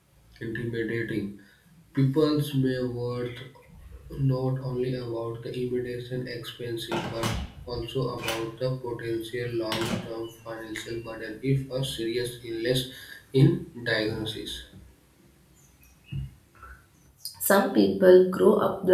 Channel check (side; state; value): both; identical; correlation 1.00